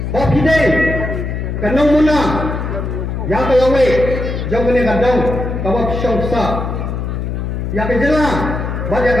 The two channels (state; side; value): noise; left; hum, 3 dB below the sound